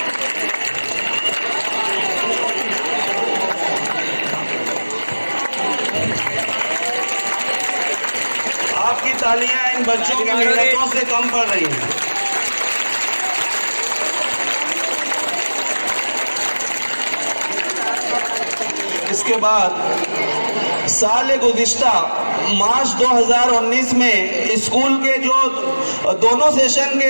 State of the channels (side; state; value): both; inverted; correlation -1.00